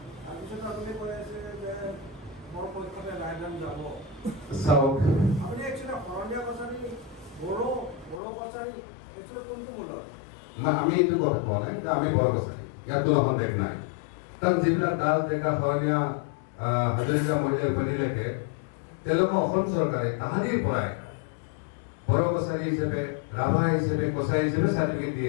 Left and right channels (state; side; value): drops out; right; at 8.2 s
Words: তাৰপিছত আপুনি কৈ আছে যে মোৰ পক্ষতে ৰায়দান যাব। চাওক, আপুনি একচুৱেলি শৰণীয়া কছাৰী, বড়ো কছাৰী একচুৱেলি কোনটো মূলত? আমি এইটো কথা কোৱা নাই, আমি বড়ো কছাৰী, ইয়াত কোনো সন্দেহ নাই। তাত যিবিলাক দাস ডেকা শৰণীয়া হাজৰিকা মহিলা উপাধিলৈকে তেওঁলোকক অসম চৰকাৰে তাহানিৰ পৰাই বড়ো কছাৰী হিচাপে, ৰাভা হিচাপে, কছাৰী হিচাপে চাৰ্টিফিকেট দি